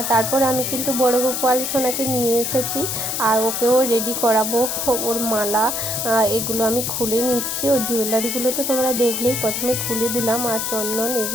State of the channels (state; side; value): noise; left; hiss, 2 dB below the sound